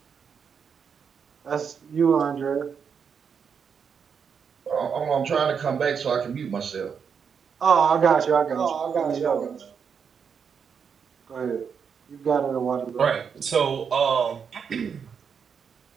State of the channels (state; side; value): quieter; left; 6.7 dB